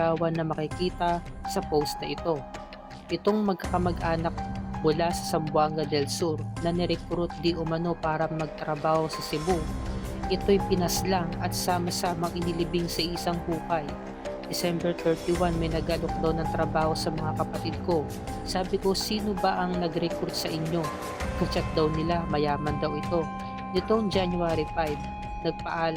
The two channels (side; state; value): both; identical; correlation 1.00